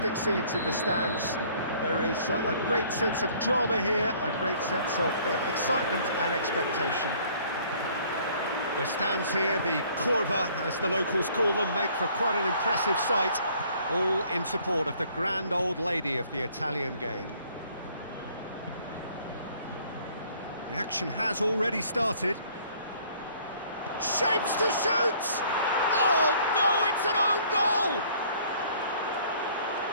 scenes in the stands. There is a great sense of drama here, a great sense of excitement and expectation. The stands here, the curva, as the locals call them, make for quite an impressive sight, all in support of the grand old lady of the Italian game. The action has already started. Shapes to shoot! Oh no, it's an own goal!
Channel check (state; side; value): inverted; both; correlation -0.58